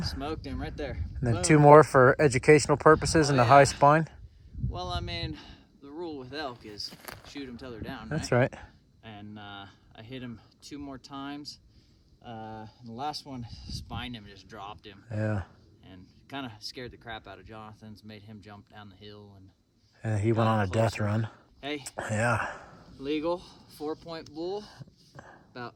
Smoked him right there. And then Boom. 2 more for educational purposes in the high spine? Well, I mean, the rule with elk is shoot them till they're down, That's right. And I hit him 2 more times. The last one spined him, just dropped him. Yeah. And kind of scared the crap out of Jonathan's, made him jump down the hill. And he went on a death run. Hey. Yeah. Legal 4-point bull, about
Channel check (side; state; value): both; identical; correlation 1.00